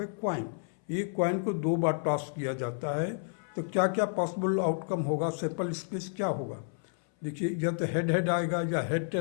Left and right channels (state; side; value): silent; right; 57 dB below the other